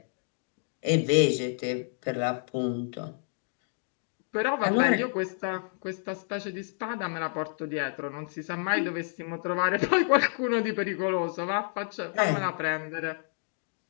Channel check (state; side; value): silent; right; 58 dB below the other